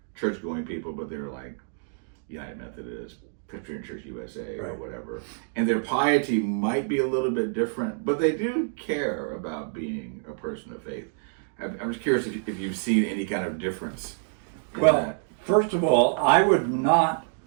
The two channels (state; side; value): silent; left; digital silence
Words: church-going people, but they're like United Methodist, Presbyterian Church USA, or whatever. And their piety might be a little bit different, but they do care about being a person of faith. I'm just curious if you've seen any kind of difference. Well, first of all, I would not